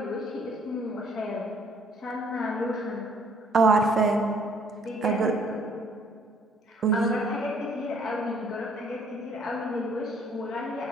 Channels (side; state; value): both; normal; correlation 0.61